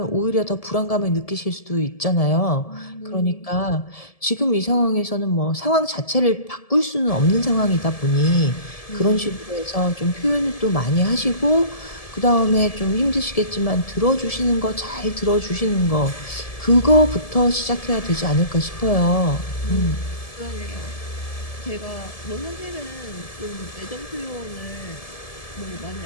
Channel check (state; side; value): late; right; 1.7 ms